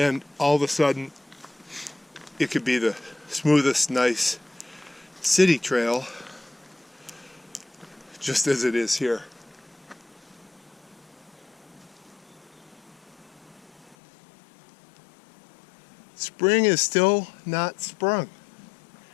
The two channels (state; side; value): drops out; right; at 14.0 s